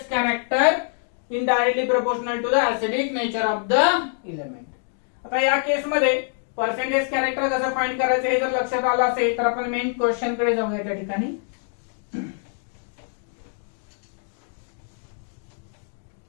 character, indirectly proportional to the acidic nature of the element. आता या केस मध्ये पर्सेंटेज कॅरेक्टर कसं फाइंड करायचं हे जर लक्षात आलं असेल तर आपण मेन क्वेश्चन कडे जाऊया त्या ठिकाणी.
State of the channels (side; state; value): right; silent; 56 dB below the other